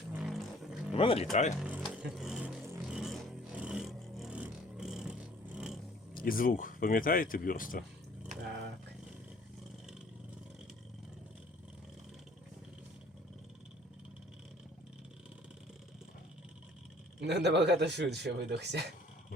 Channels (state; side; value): normal; both; correlation 0.55